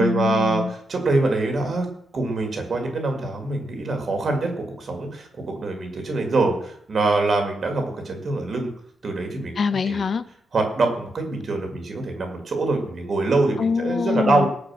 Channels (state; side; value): normal; both; correlation 0.83